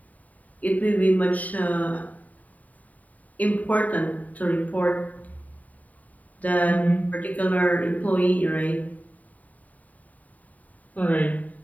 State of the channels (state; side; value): late; right; 0.073 ms